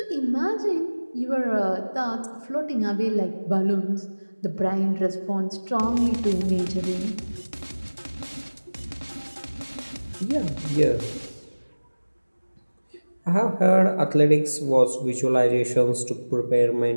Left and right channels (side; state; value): both; inverted; correlation -1.00